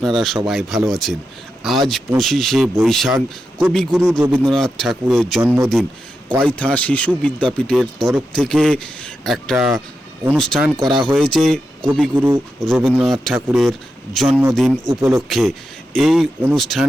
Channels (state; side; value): normal; both; correlation 0.88